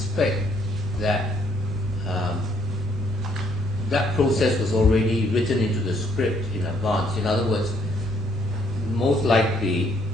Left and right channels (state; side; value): normal; both; correlation 0.68